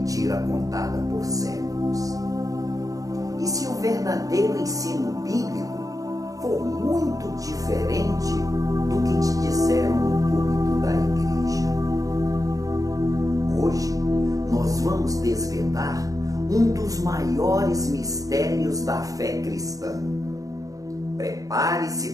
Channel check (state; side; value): late; left; 0.17 ms